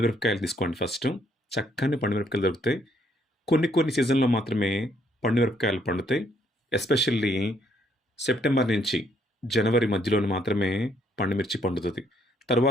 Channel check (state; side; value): normal; both; correlation 0.70